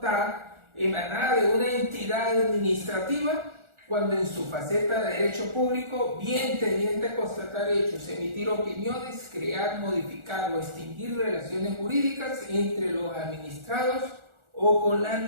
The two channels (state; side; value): late; left; 1.4 ms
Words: emanada de una entidad administrativa cuando en su faceta de derecho público, bien tendiente a constatar hechos, emitir opiniones, crear, modificar o extinguir relaciones jurídicas entre los administrados o con la